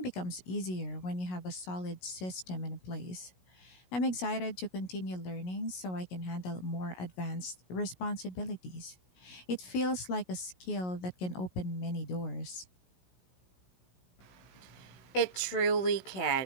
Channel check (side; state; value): right; late; 16 ms